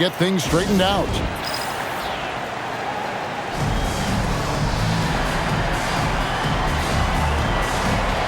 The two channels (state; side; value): identical; both; correlation 1.00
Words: things straightened out.